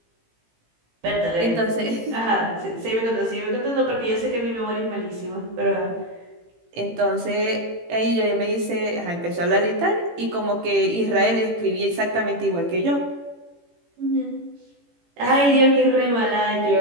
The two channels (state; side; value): late; left; 18 ms